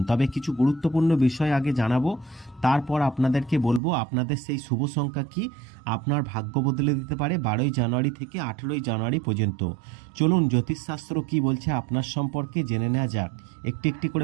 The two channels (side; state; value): left; drops out; at 3.8 s